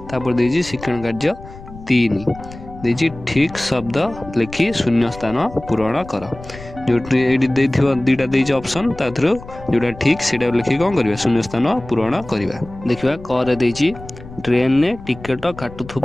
तापर देजी शिक्षण कार्य 3 देजी ठीक शब्द लिखि शून्य स्थान पूरण कर। जो दुईटा देजी ऑप्शन ता थ्रू जोटा ठीक सेटा लिखि कौन करवा शून्य स्थान पूरण करवा। देखिबा कर देजी ट्रेन ने टिकट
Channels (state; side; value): noise; left; rumble, 16 dB below the sound